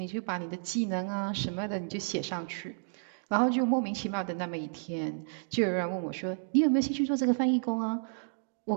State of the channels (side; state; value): left; silent; digital silence